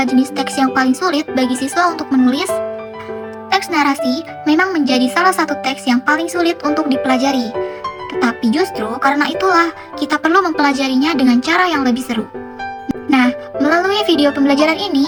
jenis teks yang paling sulit bagi siswa untuk menulis? Teks narasi memang menjadi salah satu teks yang paling sulit untuk dipelajari. Tetapi justru karena itulah kita perlu mempelajarinya dengan cara yang lebih seru. Nah, melalui video pembelajaran ini,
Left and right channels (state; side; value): identical; both; correlation 1.00